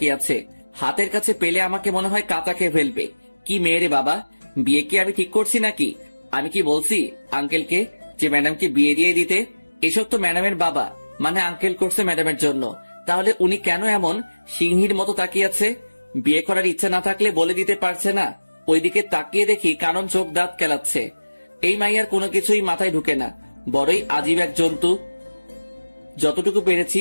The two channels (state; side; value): inverted; both; correlation -1.00